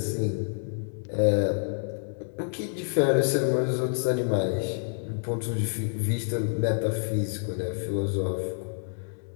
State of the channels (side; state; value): right; silent; 59 dB below the other